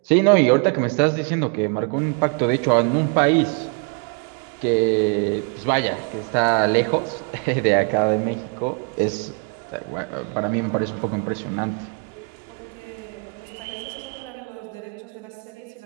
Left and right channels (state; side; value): quieter; left; 36.9 dB